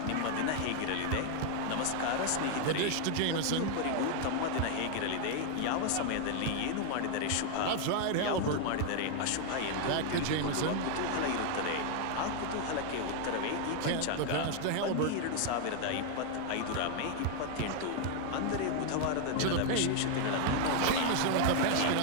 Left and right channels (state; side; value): different; both; correlation 0.00